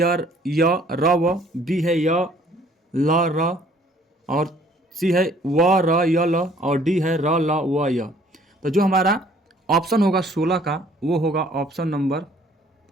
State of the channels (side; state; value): both; normal; correlation 0.58